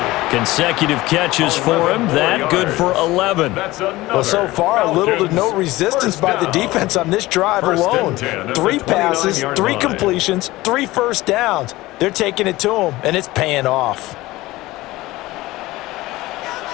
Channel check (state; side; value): quieter; right; 18.7 dB